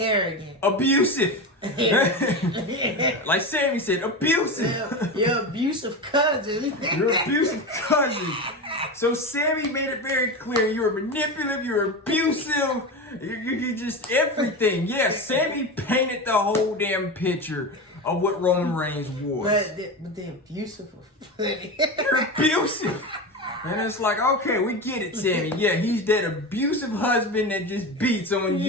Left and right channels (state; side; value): normal; both; correlation 0.22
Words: Abusive. Like Sammy said, abusive. Your abusive cousin. Your abusive cousin. So Sammy made it very clear. You're manipulative, you're abusive, you're just everything. Yeah, Sammy painted the whole damn picture of what Roman Reigns was. But the abusive was funny. You're abusive. And it's like, okay, we get it, Sammy. Yeah, he's that abusive husband that just beats on